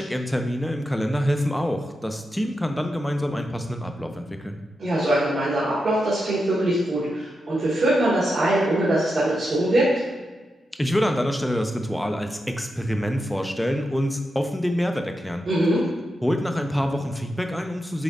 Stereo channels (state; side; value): normal; both; correlation 0.87